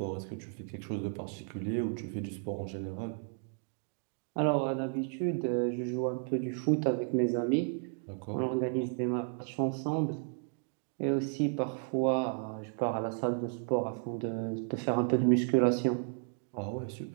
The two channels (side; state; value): left; silent; 56 dB below the other